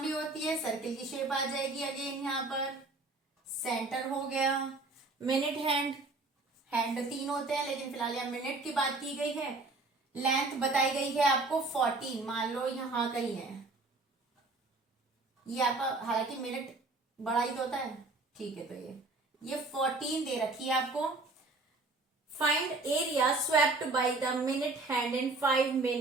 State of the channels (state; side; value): quieter; left; 3.4 dB